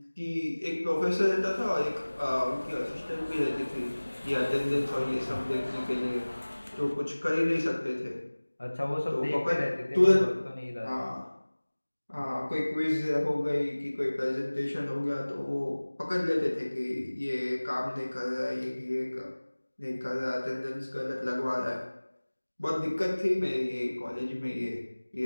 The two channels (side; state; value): both; inverted; correlation -1.00